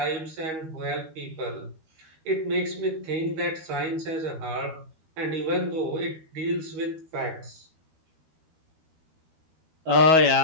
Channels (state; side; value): late; left; 12 ms